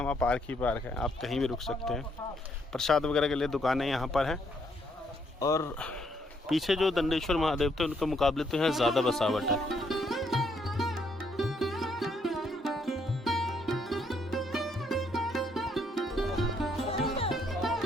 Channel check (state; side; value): normal; both; correlation 0.72